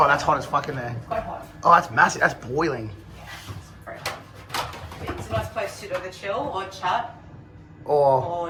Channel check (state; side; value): identical; both; correlation 1.00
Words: that's hot as fuck in there. Quite hot. Oh, that's massive. That's boiling. Very hot. It's a nice place to either chill or chat Or